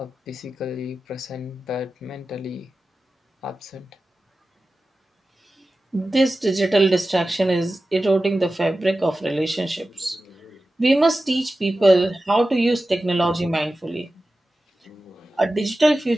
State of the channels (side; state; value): both; normal; correlation 0.94